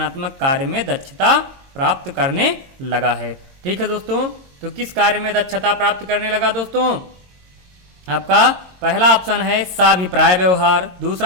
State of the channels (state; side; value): late; left; 22 ms